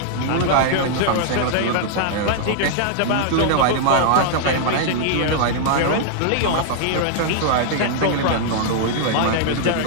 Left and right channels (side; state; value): both; different; correlation -0.01